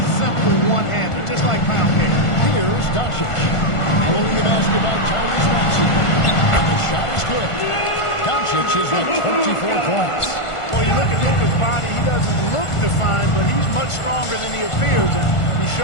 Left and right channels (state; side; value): late; right; 1.5 ms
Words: simple one-hander, just like pound cake. Here's Doncic. Pulling the basket by Tyrese Maxey. And the shot is good. Doncic is at 24 points. Well, you look at Luka's body, he doesn't look defined, but he's much stronger than he appears, and he